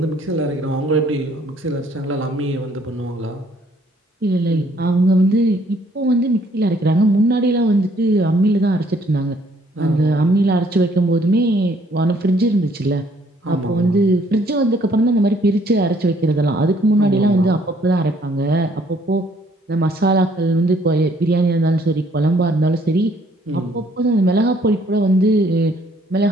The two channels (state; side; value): normal; both; correlation 0.64